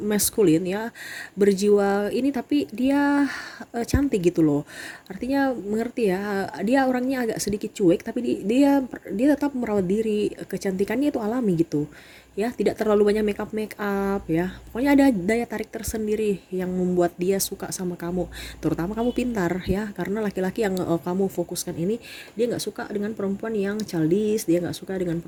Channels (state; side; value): identical; both; correlation 1.00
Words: ya, berjiwa ini, tapi dia cantik gitu loh. Artinya mengerti ya, dia orangnya agak sedikit cuek tapi dia tetap merawat diri, kecantikannya itu alami gitu ya, tidak terlalu banyak make up ya. Pokoknya ada daya tarik tersendiri yang membuat dia suka sama kamu. Terutama kamu pintar ya, karena laki-laki yang kamu fokuskan ini, dia nggak suka dengan perempuan yang childish, dia nggak suka dengan